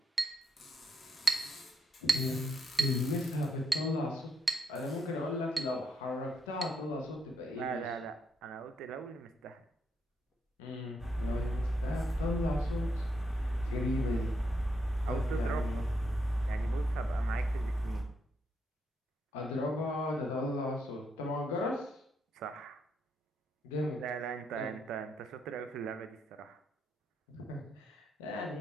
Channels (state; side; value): normal; both; correlation 0.78